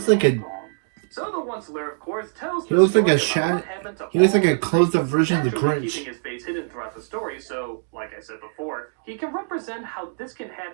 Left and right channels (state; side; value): silent; left; digital silence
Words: like a So the onceler, of course, tells He the looks like a story about shad- what happened to he looks all like a the closed-up trees, version of the naturally Grinch. keeping his face hidden throughout the story, so, like I said before, he can represent how this can